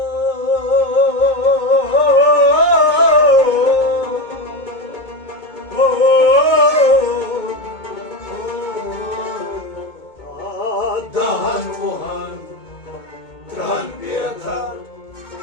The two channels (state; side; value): late; right; 2.2 ms